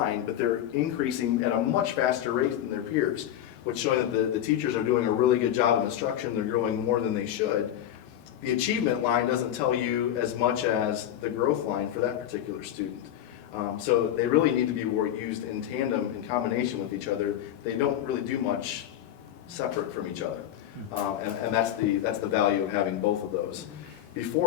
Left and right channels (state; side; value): quieter; right; 11.2 dB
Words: but they're increasing at a much faster rate than their peers, which showing that the teachers are doing a really good job of instruction, they're growing more than they should. The achievement line doesn't tell you as much as the growth line for that particular student. So they really need to be used in tandem, in combination with each other. They don't really do much separate from each other. And that's the value of having both of those.